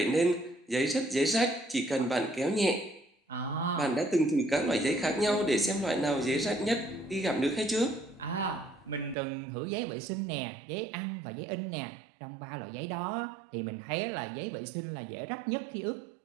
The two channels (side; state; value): left; drops out; at 9.2 s